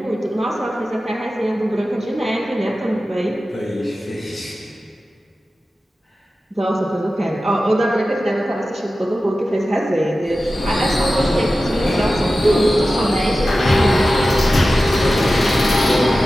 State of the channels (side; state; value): both; normal; correlation 0.94